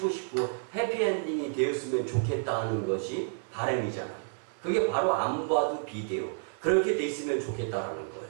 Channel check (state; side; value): silent; left; 58 dB below the other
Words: 싶고 해피엔딩이 되었으면 좋겠다 하는 것이 바램이잖아요. 그게 바로 안 봐도 비대요. 그렇게 돼 있으면 좋겠다라는 거예요.